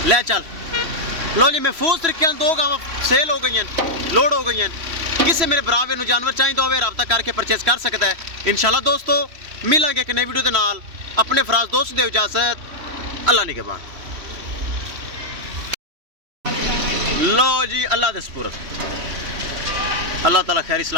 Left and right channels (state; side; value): late; left; 3.1 ms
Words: ले चल। लो जी महफूज तरीके दो गावां सेल हो गई, लोड हो गई। किसी मेरे भरावे नूं जानवर चाहिए होवे राबता करके परचेज कर सकता है। इंशाल्लाह दोस्तों मिलांगे एक नई वीडियो के नाल। अपने फराज दोस्त दे इजाजत। अल्लाह निगहबान। लो जी अल्लाह दे सुपुर्द। अल्लाह ताला खैर